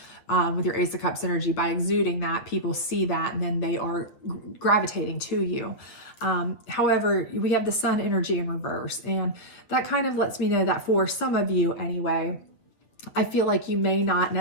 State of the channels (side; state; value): right; late; 8.9 ms